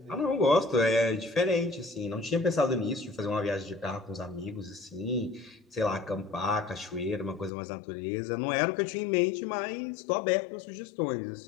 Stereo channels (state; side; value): drops out; right; at 7.5 s